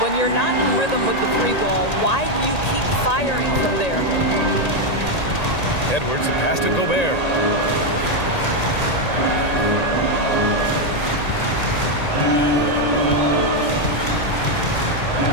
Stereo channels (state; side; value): late; right; 1.8 ms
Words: you're not in rhythm with the three ball, why do you keep firing from there? Edwards, a pass to Gobert.